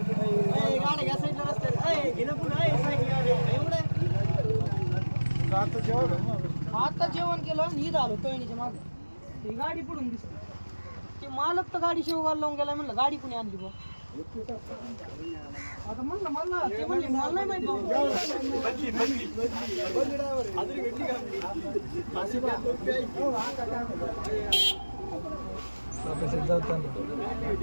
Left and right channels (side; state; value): both; inverted; correlation -1.00